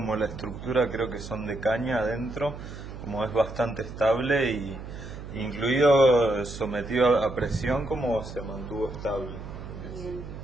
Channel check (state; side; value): noise; right; hum, 11 dB below the sound